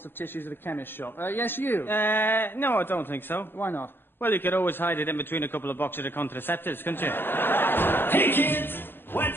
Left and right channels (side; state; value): right; late; 0.10 ms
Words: of tissues at a chemist shop? Yes, you? No, I don't think so. Why not? Well, you could always hide it in between a couple of boxes of contraceptives, couldn't you? Hey, kids,